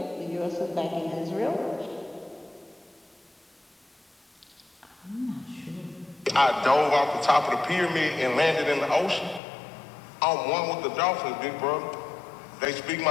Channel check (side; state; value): right; drops out; at 9.4 s